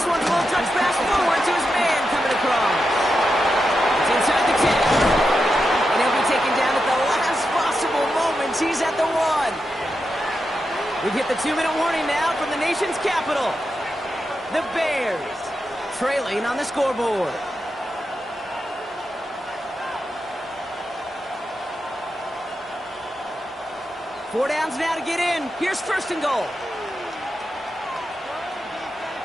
one's a little touch pass forward to his man coming across. It's inside the 10. And he'll be taken down at the last possible moment. He's at the 1. We've hit the 2-minute warning now from the nation's capital. The Bears trailing on the scoreboard. Four downs now to get in. Here's 1st and goal.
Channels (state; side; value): normal; both; correlation 0.88